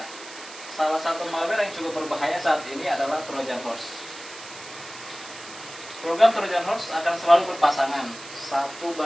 Salah satu malware yang cukup berbahaya saat ini adalah Trojan Horse. Program Trojan Horse akan selalu berpasangan. Satu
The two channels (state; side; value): noise; right; hiss, 15 dB below the sound